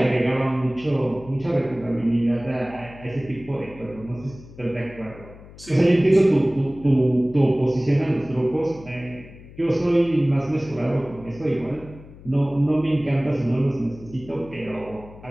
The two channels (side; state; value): left; noise; hum, 19 dB below the sound